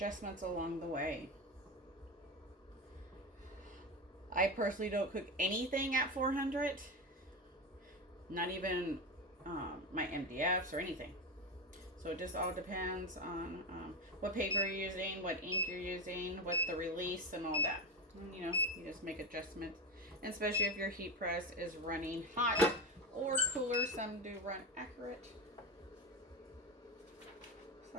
along the way. I personally don't cook anything at 400. Not even my MDFs or anything. So it just all depends on what paper you're using, what ink you're using, what the release and all that. And, you know, you just make adjustments. And especially if your heat press is running hot or cooler. Some do run accurate.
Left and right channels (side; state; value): both; normal; correlation 0.18